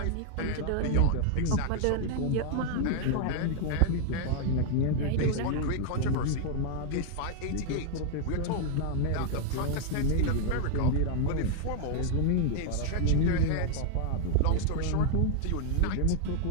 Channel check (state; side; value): different; both; correlation 0.00